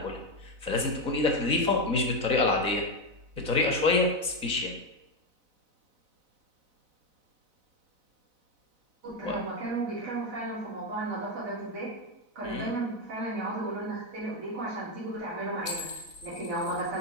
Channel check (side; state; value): left; late; 4.0 ms